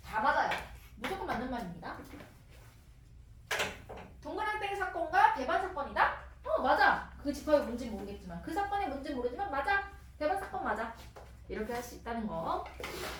다 맞아요. 무조건 맞는 말입니다. 동그란 땡 사건과 배반 사건이다? 맞아. 그 집합이 뭔지 모르겠지만 그 사건이 뭔지 모르지만 맞아. 배반 사건 맞아. 이렇게 할 수 있다는 거.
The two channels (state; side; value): identical; both; correlation 1.00